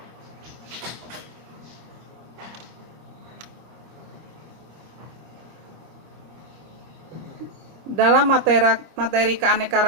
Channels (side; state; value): left; late; 25 ms